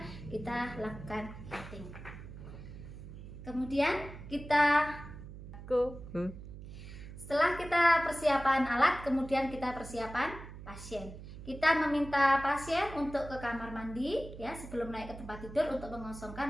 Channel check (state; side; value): noise; right; hum, 13 dB below the sound